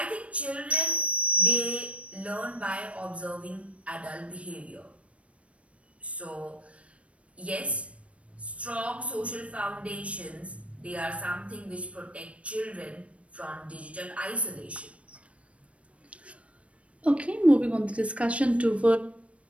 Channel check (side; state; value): left; late; 0.063 ms